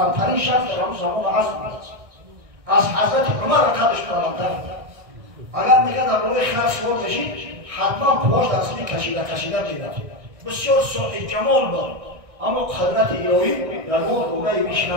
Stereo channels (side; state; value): left; late; 1.6 ms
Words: шахс дар ҳамун замон азм аст. аз ҳазрати умар қадрш баландтар. агар мегӯяд дар бораи хар суол кашид, ҳатман пош дар асли кашида медад. бисёр соҳибҷамол буд, аммо қудрати илоҳӣ дар он гунаи виш